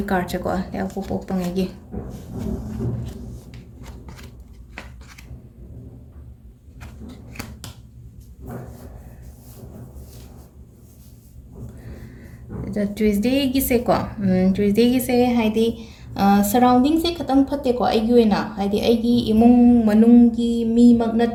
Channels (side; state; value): both; identical; correlation 1.00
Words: ꯀꯥꯔꯠꯁꯦꯀꯣ ꯂꯩꯕꯥꯛꯄꯣꯛꯄ ꯄꯣꯛꯄꯉꯩꯒꯤ ꯇ꯭ꯌꯨꯁꯗꯦꯒꯤꯁꯦꯀꯣ ꯇ꯭ꯌꯨꯁꯗꯦꯒꯤꯁꯦ ꯍꯥꯏꯗꯤ ꯁꯔꯥꯎꯟꯗꯤꯡꯁꯦ ꯈꯤꯇꯪ ꯐꯠꯇꯦꯀꯣ ꯑꯩꯒꯤ ꯑꯣꯏꯅ ꯍꯥꯏꯗꯤ ꯑꯩꯒꯤ ꯏꯃꯨꯡ ꯃꯅꯨꯡꯒꯤ ꯃꯤꯃꯛ